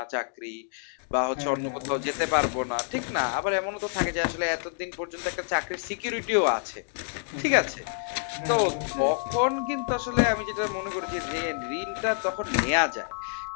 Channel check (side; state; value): right; silent; 59 dB below the other